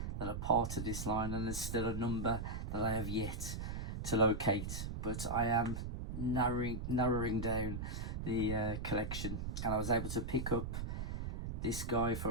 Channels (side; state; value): right; noise; rumble, 4 dB below the sound